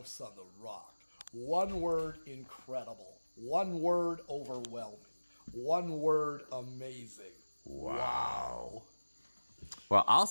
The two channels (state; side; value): inverted; both; correlation -1.00